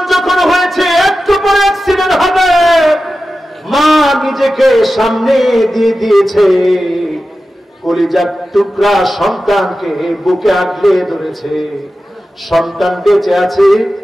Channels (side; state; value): both; normal; correlation 0.93